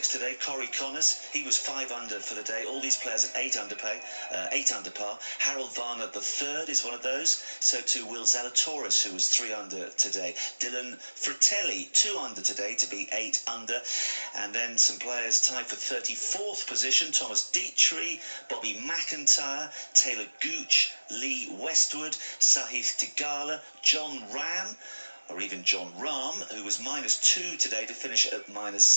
today. Corey Connors, he was 5 under for the day. All these players at 8 under par. Harold Varner, the third, is one of those. So too Will Zalatoris, who was 3 under today. Dylan Fratelli, 2 under today to be 8 under. And then some players tied for 34th position. Thomas Dietrich, Bobby McIntyre, Taylor Gooch, Lee Westwood, Sahith Theegala, John Ram, or even John Rahm, who was -2 today to finish at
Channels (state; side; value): inverted; both; correlation -1.00